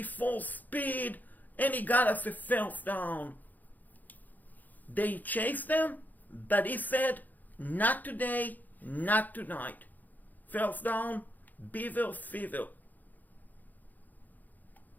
speed, and he got us a first down. They chased them, but he said, not today, not tonight. First down, Beaver Fever.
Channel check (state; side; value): late; right; 0.083 ms